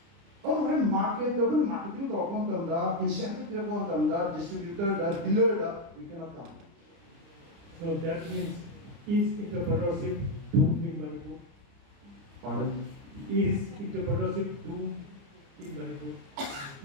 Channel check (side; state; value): left; late; 29 ms